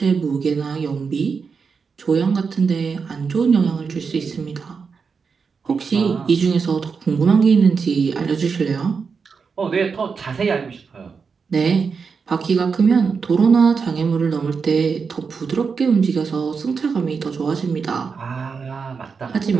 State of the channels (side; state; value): left; quieter; 5.4 dB